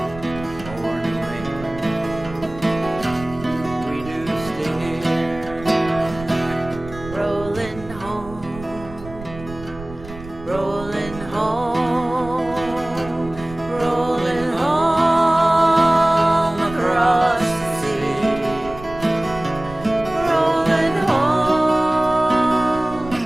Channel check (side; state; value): right; noise; rumble, 15 dB below the sound